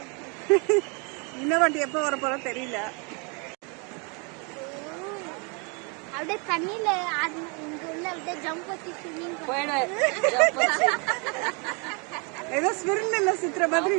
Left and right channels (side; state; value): left; quieter; 33.3 dB